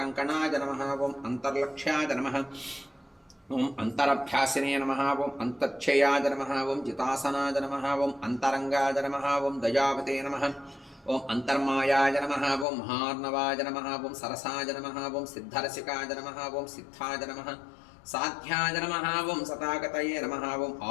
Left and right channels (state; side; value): drops out; right; at 12.7 s